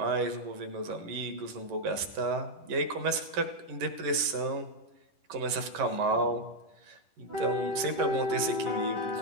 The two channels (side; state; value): left; late; 10 ms